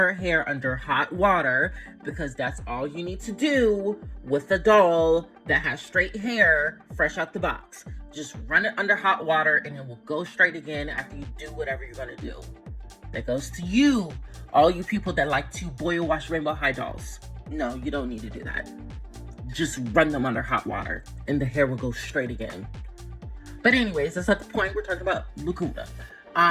hair under hot water, because that's all you need to do with a doll that has straight hair fresh out the box. Just run it under hot water and it will go straight again after you do whatever you're gonna do. That goes to you, all you people that like to boil wash rainbow high dolls. No, you don't need to do that. Just run them under hot water and the hair will go straight again. But anyways, that's not the point. We're talking about Lagoona.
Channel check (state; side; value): identical; both; correlation 1.00